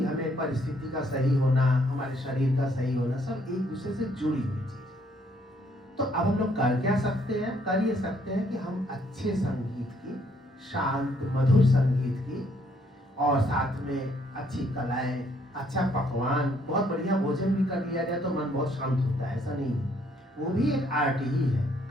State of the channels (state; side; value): normal; both; correlation 0.67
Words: हमें परिस्थिति का सही होना, हमारे शरीर का सही होना, सब एक दूसरे से जुड़ी हुई चीज। तो अब हम लोग कर क्या सकते हैं? कर ये सकते हैं कि हम अच्छे संगीत की, शांत मधुर संगीत की, और साथ में अच्छी कलाएं, अच्छा पकवान, बहुत बढ़िया भोजन भी कर लिया जाए तो मन बहुत शांत होता है। ऐसा नहीं है, वो भी एक आर्ट ही है,